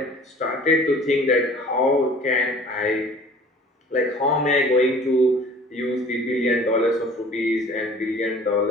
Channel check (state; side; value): normal; both; correlation 0.48